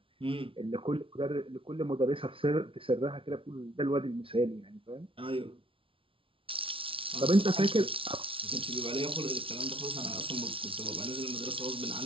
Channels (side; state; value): left; late; 0.25 ms